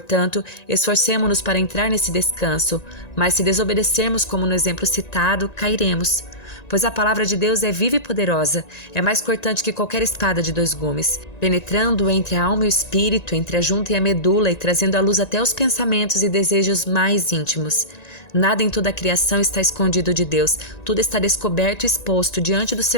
esforcemo-nos para entrar nesse descanso, mas se desobedecermos como no exemplo citado, cairemos. Pois a palavra de Deus é viva e poderosa, é mais cortante que qualquer espada de 2 gumes, penetrando entre a alma e o espírito, entre a junta e a medula e trazendo à luz até os pensamentos e desejos mais íntimos. Nada em toda a criação está escondido de Deus, tudo está descoberto e exposto diante dos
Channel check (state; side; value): late; right; 1.9 ms